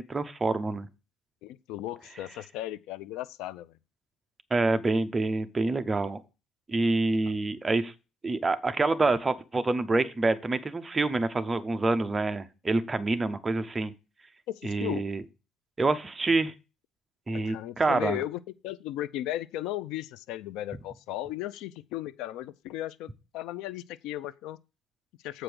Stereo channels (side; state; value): both; normal; correlation 0.85